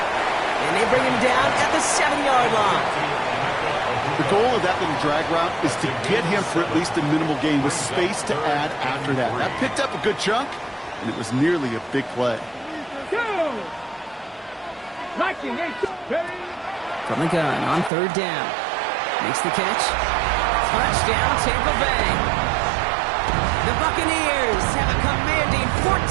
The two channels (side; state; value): left; drops out; at 17.9 s